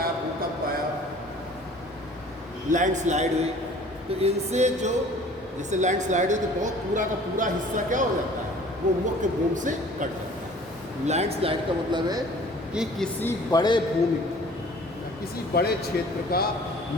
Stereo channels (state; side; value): normal; both; correlation 0.49